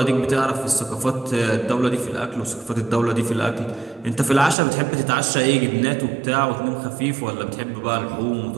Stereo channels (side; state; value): left; drops out; at 4.5 s